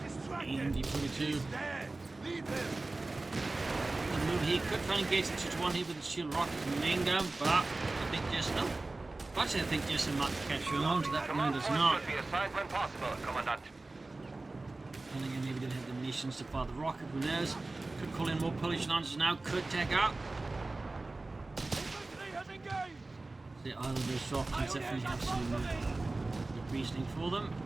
MG-42. The move here could try and engage the 2-1 here with the shield rockets and main gun, but I think Jesulin. Actually, I think Jesulin might catch on to that, but no, does not. Should be assigned when possible, Commandant. I think maybe didn't have the munitions to fire the rocket, who knows? Could call in more Polish Lancers now, could take out. The either of those options definitely have some good reasoning for them.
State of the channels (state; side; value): quieter; left; 3.2 dB